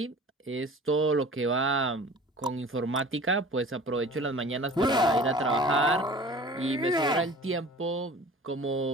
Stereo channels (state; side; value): normal; both; correlation 0.43